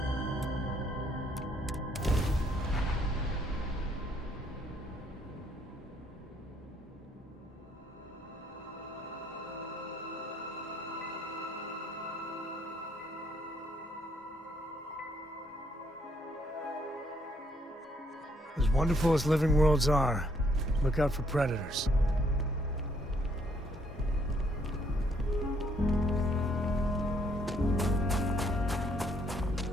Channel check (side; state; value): both; normal; correlation 0.69